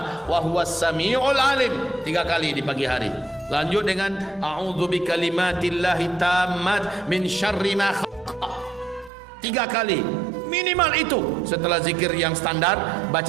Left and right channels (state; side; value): drops out; left; at 9.1 s